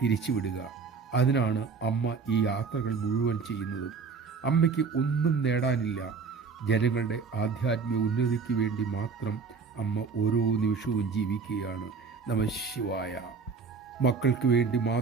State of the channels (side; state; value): left; quieter; 5.1 dB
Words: അതിനാണ് അമ്മ ഈ യാത്രകൾ മുഴുവൻ ചെയ്യുന്നതും. അമ്മയ്ക്ക് ഒന്നും നേടാനില്ല. ജനങ്ങളുടെ ആധ്യാത്മിക ഉന്നതിക്ക് വേണ്ടി മാത്രം അമ്മ ഓരോ നിമിഷവും ജീവിക്കുകയാണ്. നമഃ ശിവായ. മക്കൾക്ക് വേണ്ടി